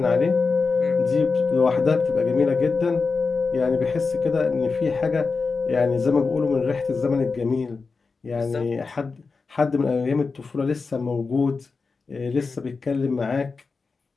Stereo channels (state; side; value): quieter; right; 4.5 dB